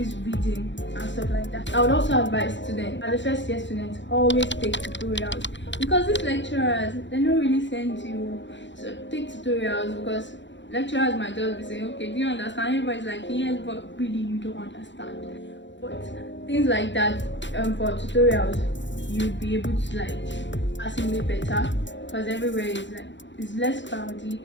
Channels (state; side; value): late; right; 0.53 ms